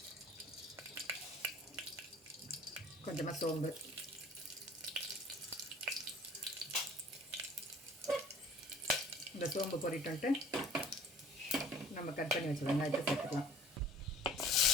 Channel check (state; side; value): normal; both; correlation 0.50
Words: கொஞ்சமாக சோம்பு, இந்த சோம்பு பொரிட்டு நம்ம கட் பண்ணி வச்சு வெங்காயத்தை சேர்த்துக்கலாம்.